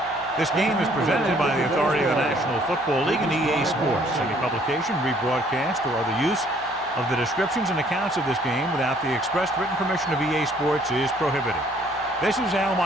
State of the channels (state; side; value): normal; both; correlation 0.61